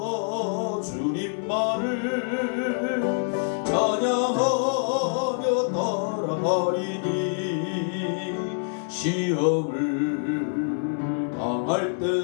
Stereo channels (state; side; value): silent; right; 61 dB below the other